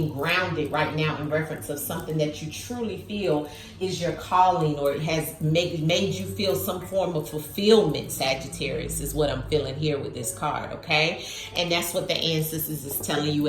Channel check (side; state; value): both; identical; correlation 1.00